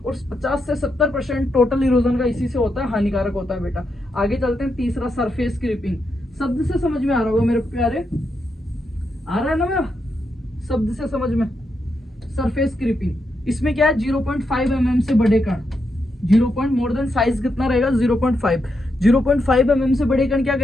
और 50 से 70% टोटल इरोजन का इसी से होता है, हानिकारक होता है बेटा। आगे चलते हैं, तीसरा सरफेस क्रीपिंग। शब्द से समझ में आ रहा होगा मेरे प्यारे, आ रहा है ना मेरा? शब्द से समझ में, सरफेस क्रीपिंग। इसमें क्या है? 0.5 mm से बड़े कण, 0. मोर देन साइज कितना रहेगा? 0.5। 0.5 mm से बड़े कण क्या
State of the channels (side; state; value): both; normal; correlation 0.83